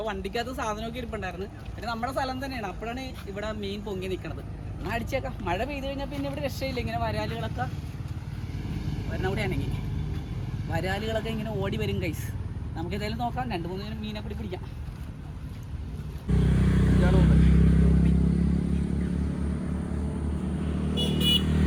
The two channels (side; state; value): both; identical; correlation 1.00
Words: വണ്ടിക്കകത്ത് സാധനമൊക്കെ ഇരിപ്പുണ്ടായിരുന്നു. പിന്നെ നമ്മുടെ സ്ഥലം തന്നെയാണ്. അപ്പോഴാണ് ഇവിടെ മീൻ പൊങ്ങി നിൽക്കണത്. എന്നാൽ അടിച്ചേക്കാം. മഴ പെയ്ത് കഴിഞ്ഞാൽ പിന്നെ ഇവിടെ രക്ഷയില്ല. ഇങ്ങനെ വരാലുകളൊക്കെ വരണ കൂടെയാണെങ്കിൽ വരാലുകളൊക്കെ ഇങ്ങനെ ഓടി വരും ഗൈസ്. നമുക്ക് ഏതായാലും നോക്കാം. 2-3 മീനെ കൂടി പിടിക്കാം.